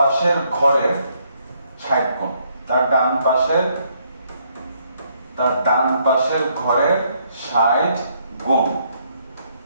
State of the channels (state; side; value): inverted; both; correlation -0.71